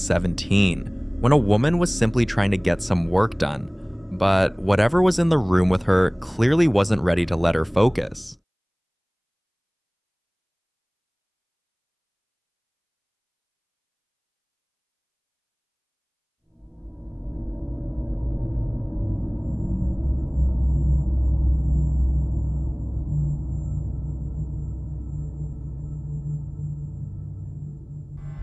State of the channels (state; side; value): identical; both; correlation 1.00